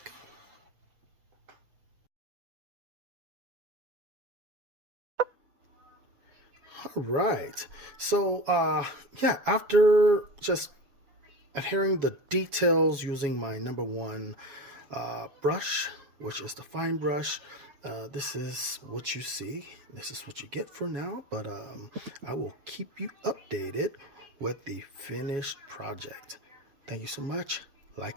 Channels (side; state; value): left; late; 7.2 ms